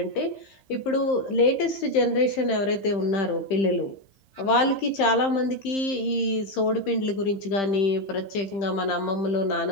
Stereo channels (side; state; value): right; late; 15 ms